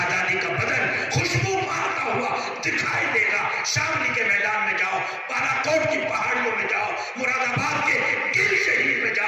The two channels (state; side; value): identical; both; correlation 1.00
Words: کا بدن خوشبو مارتا ہوا دکھائی دے گا۔ شاملی کے میدان میں جاؤ، بالا کوٹ کی پہاڑیوں میں جاؤ، مراد آباد کے گل شہید میں